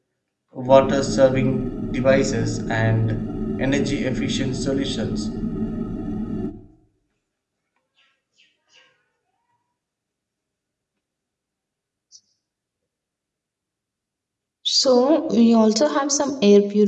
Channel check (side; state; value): both; identical; correlation 1.00